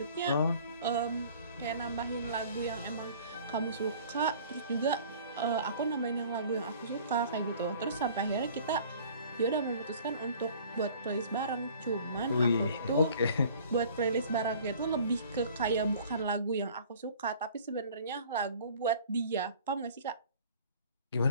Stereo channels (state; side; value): inverted; both; correlation -0.49